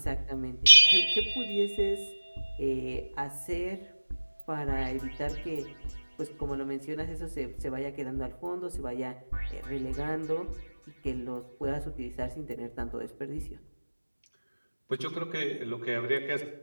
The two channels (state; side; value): inverted; both; correlation -1.00